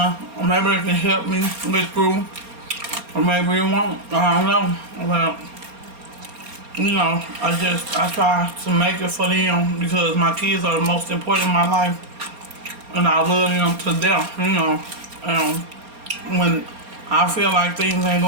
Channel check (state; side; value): late; left; 4.3 ms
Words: can help me get through. Or maybe it won't. I don't know. But, I try to make it for them because my kids are the most important in my life. And I love them to death, when I feel like things ain't